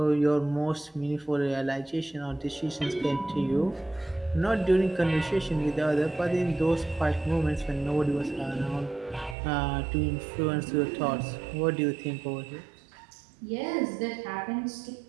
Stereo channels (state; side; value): drops out; left; at 9.3 s